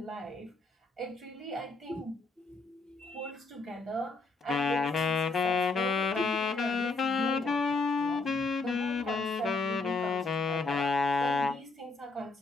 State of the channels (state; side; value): quieter; right; 3.6 dB